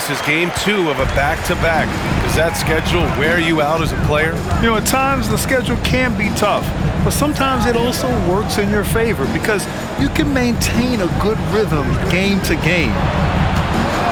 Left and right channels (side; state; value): both; identical; correlation 1.00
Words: is game 2 of a back-to-back. Does that schedule wear you out as a player? You know, at times the schedule can be tough, but sometimes it also works in your favor because you can maintain a good rhythm game to game.